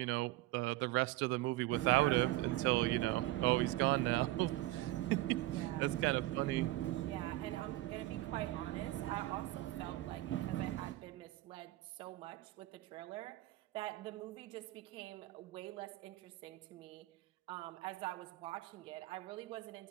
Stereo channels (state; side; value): quieter; left; 17.3 dB